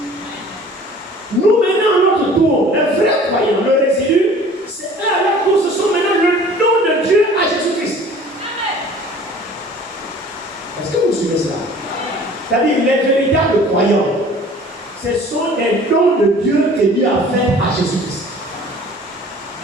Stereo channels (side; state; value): both; normal; correlation 0.48